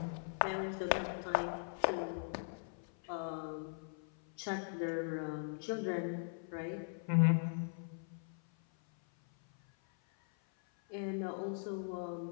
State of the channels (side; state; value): right; silent; 51 dB below the other